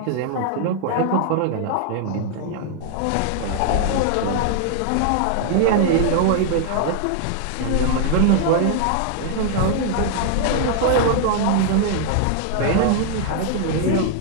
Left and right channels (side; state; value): both; different; correlation 0.00